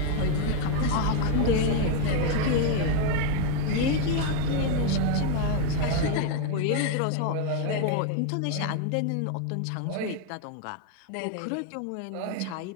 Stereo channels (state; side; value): different; both; correlation 0.01